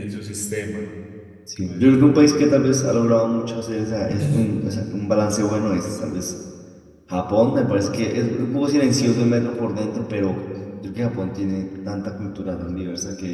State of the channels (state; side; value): identical; both; correlation 1.00